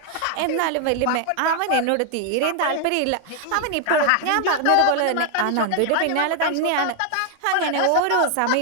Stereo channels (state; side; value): different; both; correlation 0.00